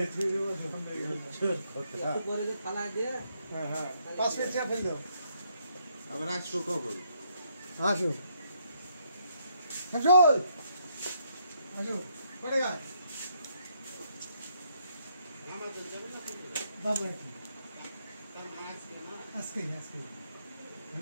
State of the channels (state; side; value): inverted; both; correlation -0.73